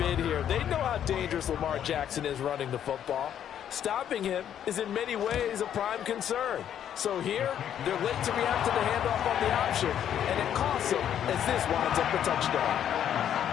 here. They know how dangerous Lamar Jackson is running the football. Stopping him is in many ways a prime concern. So here, they're late to react to the handoff on the option, and it costs them as this winds up a touchdown.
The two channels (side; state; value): right; quieter; 9.8 dB